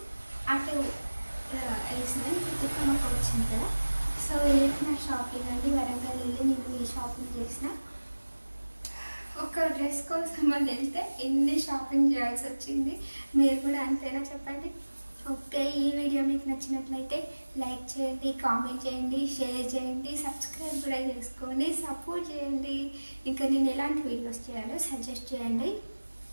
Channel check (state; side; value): inverted; both; correlation -1.00